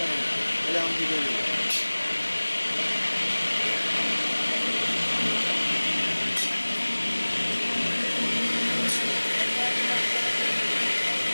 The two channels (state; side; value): inverted; both; correlation -1.00